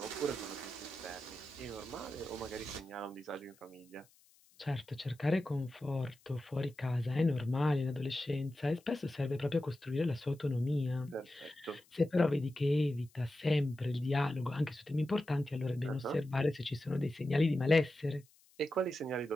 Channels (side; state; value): left; noise; hiss, 30 dB below the sound